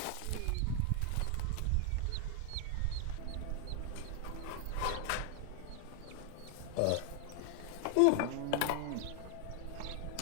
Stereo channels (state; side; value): different; both; correlation 0.00